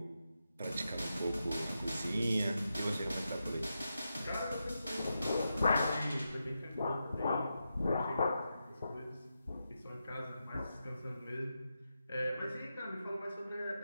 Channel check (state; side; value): inverted; both; correlation -0.87